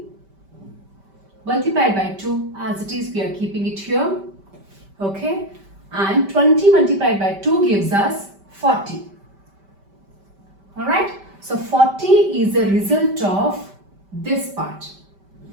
Multiplied by 2, as it is, we are keeping it here. Okay, and 20 multiplied by 2 gives us 40. Alright, so 40 is the result of this part,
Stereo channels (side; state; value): left; late; 5.1 ms